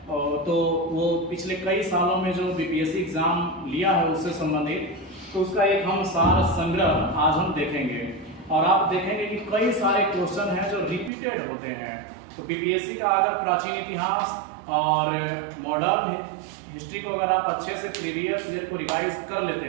तो वो पिछले कई सालों में जो बीपीएससी एग्जाम लिया है उससे संबंधित, तो उसका एक हम सार संग्रह आज हम देखेंगे। और आप देखेंगे कि कई सारे क्वेश्चन हैं जो रिपीटेड होते हैं। तो बीपीएससी का अगर प्राचीन इतिहास और मॉडर्न हिस्ट्री को अगर आप अच्छे से प्रीवियस ईयर को रिवाइज कर लेते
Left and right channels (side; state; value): left; drops out; at 11.1 s